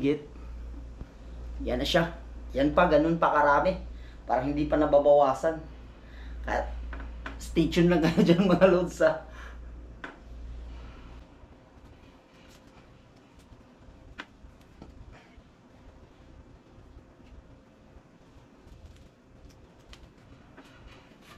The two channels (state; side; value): identical; both; correlation 1.00